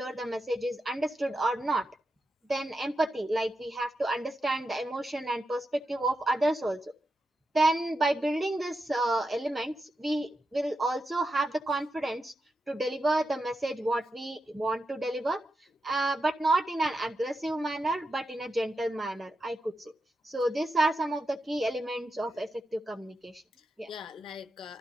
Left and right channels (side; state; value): both; normal; correlation 0.88